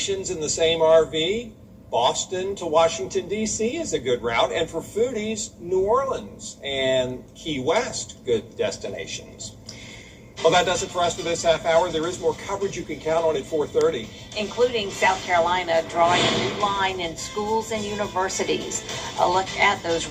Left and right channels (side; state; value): both; identical; correlation 1.00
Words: in the same RV. Boston to Washington, D.C. is a good route. And for foodies, New Orleans and Key West, good destinations. Well, that does it for us for this half hour. There is more coverage you can count on at 4:30. Including South Carolina drawing a new line in schools and universities. A look at those